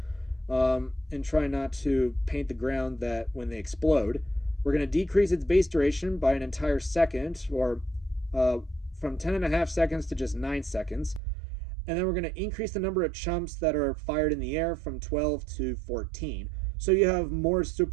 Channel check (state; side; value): drops out; left; at 11.2 s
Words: and try not to paint the ground that when they explode. We're going to decrease its base duration by an entire second, or from 10.5 seconds to just 9 seconds. And then we're going to increase the number of chumps that are fired in the air from 12 to 14. So you have more